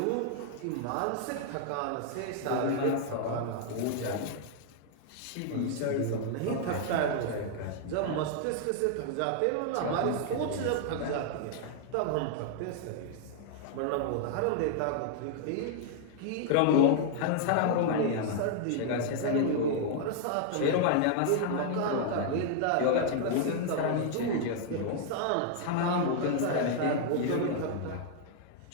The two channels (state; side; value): different; both; correlation 0.00